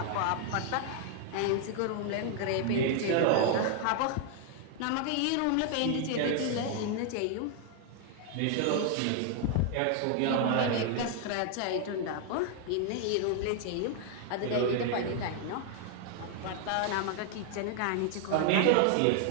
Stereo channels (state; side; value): different; both; correlation 0.00